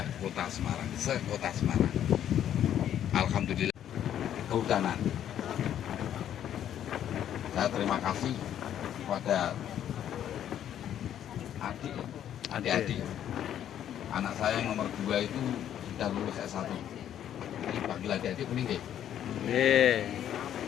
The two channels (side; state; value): right; quieter; 10.4 dB